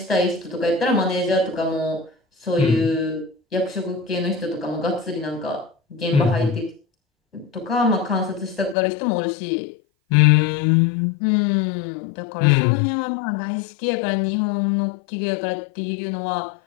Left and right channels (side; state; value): right; drops out; at 8.8 s